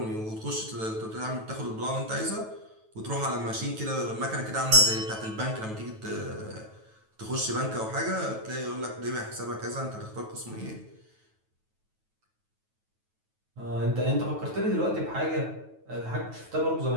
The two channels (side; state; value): left; late; 9.2 ms